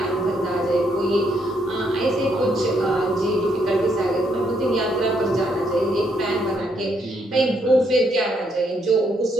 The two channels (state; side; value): normal; both; correlation 0.74